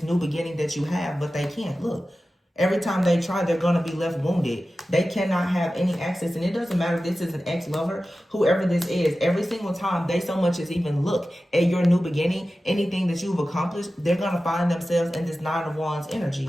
new beginning that you have, but they can't. Look. Every time they try, they're going to be left wounded. They cannot have any access. And it doesn't matter if this is an ex-lover, whoever this is. Every single time they so much as even look at your new beginning, anything that you've accomplished, they're going to find themselves in this Nine of Wands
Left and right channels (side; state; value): both; normal; correlation 0.94